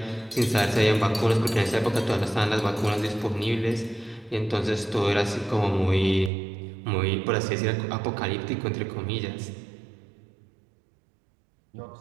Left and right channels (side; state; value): left; drops out; at 6.3 s